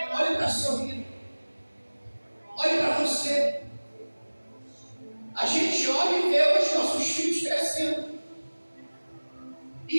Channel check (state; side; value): inverted; both; correlation -1.00